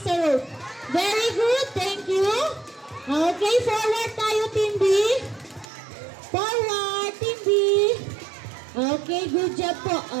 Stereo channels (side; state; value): left; drops out; at 5.7 s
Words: sa rope. Very good. Thank you. Okay, forward tayo, Team B. Forward, Team B. Okay, good job po.